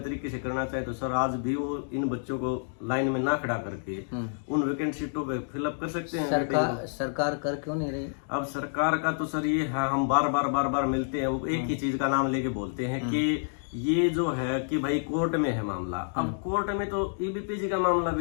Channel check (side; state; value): right; silent; digital silence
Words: से करना चाहे तो सर आज भी वो इन बच्चों को लाइन में ना खड़ा करके उन वैकेंट सीटों पे फिलअप कर सकते हैं। सरकार कर क्यों नहीं रही? अब सरकार का तो सर ये है, हम बार बार मिलते हैं, वो एक ही चीज का नाम लेके बोलते हैं कि ये जो है कि भाई कोर्ट में है मामला। अब कोर्ट में तो EBPG का मामला